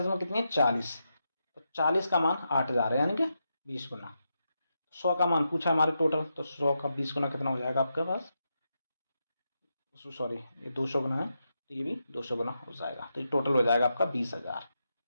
में कितनी है 40, तो 40 का मान 8000 है, यानी कि 20 गुना। 100 का मान पूछा हमारे टोटल, तो 100 का 20 गुना कितना हो जाएगा आपके पास, सॉरी ये 200 गुना है तो ये भी 200 गुना हो जाएगा, तो ये टोटल हो जाएगा आपका 20,000।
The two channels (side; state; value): both; inverted; correlation -0.85